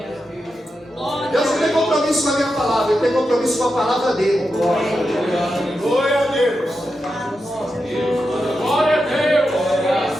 Deus não tem compromisso com a minha palavra, Ele tem compromisso com a palavra dele. Glória a Deus. Glória a Deus.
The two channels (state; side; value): normal; both; correlation 0.88